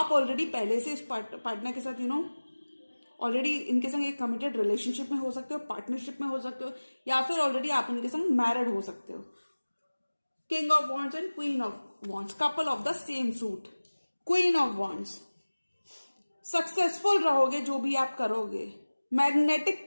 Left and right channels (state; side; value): inverted; both; correlation -1.00